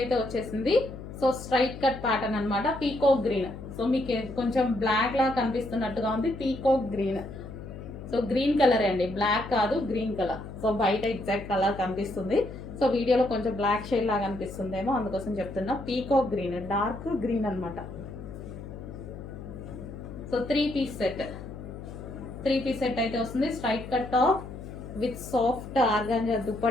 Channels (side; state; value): left; noise; hum, 11 dB below the sound